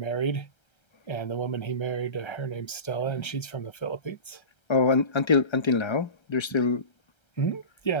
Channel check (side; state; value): right; late; 1.3 ms